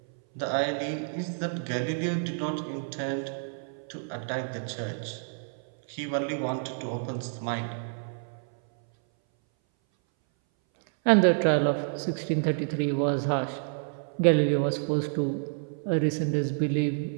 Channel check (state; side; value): silent; left; 58 dB below the other